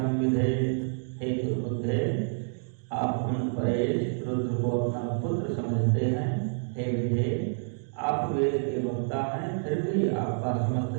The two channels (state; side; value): silent; left; digital silence